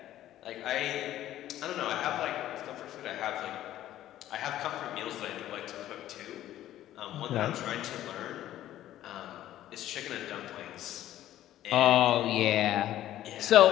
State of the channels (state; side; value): quieter; right; 13.1 dB